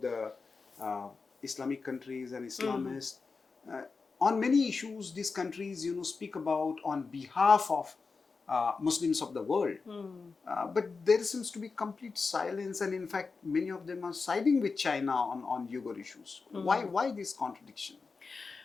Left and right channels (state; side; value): quieter; right; 4.5 dB